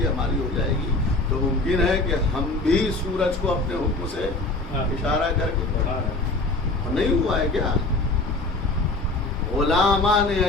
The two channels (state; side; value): quieter; right; 3.0 dB